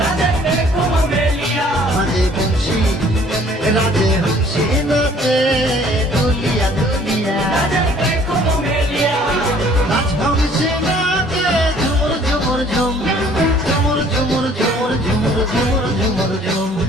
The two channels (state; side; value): normal; both; correlation 0.57